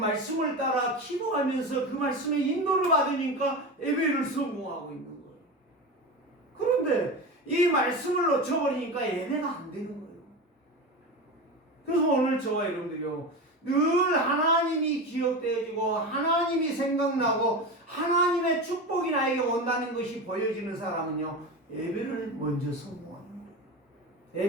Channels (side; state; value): both; normal; correlation 0.24